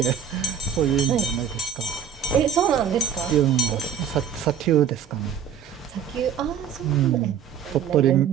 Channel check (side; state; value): left; quieter; 8.2 dB